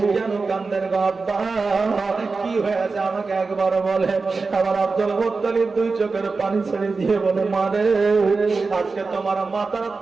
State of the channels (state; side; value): quieter; left; 4.2 dB